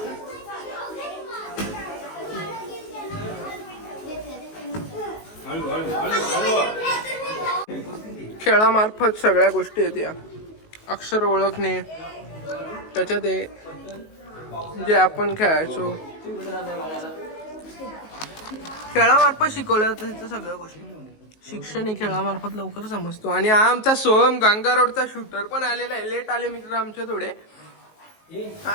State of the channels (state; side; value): late; right; 19 ms